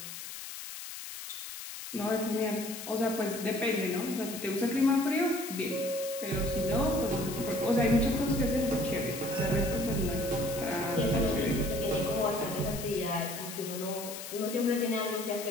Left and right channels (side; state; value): left; noise; hiss, 9 dB below the sound